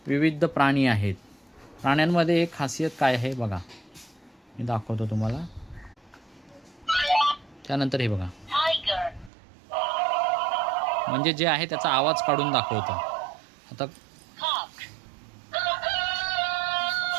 विविध प्राणी आहेत. प्राण्यांमध्ये एक खासियत काय आहे बघा, मी दाखवतो तुम्हाला. त्यानंतर हे बघा, म्हणजे जे आहे त्याचा आवाज काढून दाखवतं. आता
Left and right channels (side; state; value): left; drops out; at 9.3 s